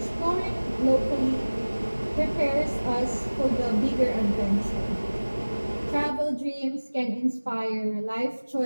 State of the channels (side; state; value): both; inverted; correlation -1.00